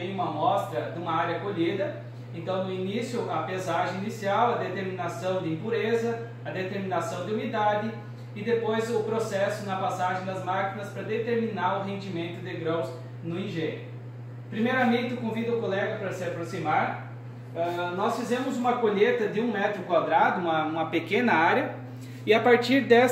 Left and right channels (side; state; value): both; identical; correlation 1.00